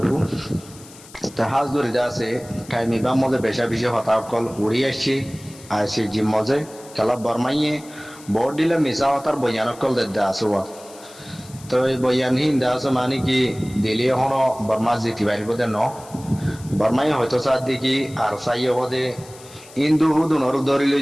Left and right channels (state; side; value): noise; left; hiss, 21 dB below the sound